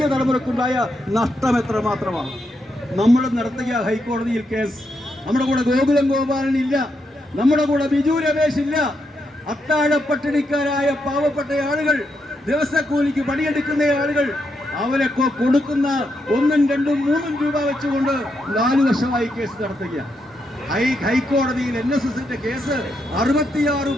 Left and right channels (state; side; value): normal; both; correlation 0.81